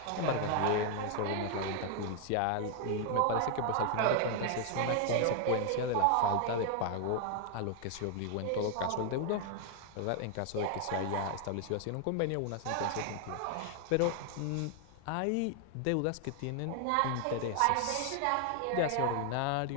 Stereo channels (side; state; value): both; different; correlation 0.00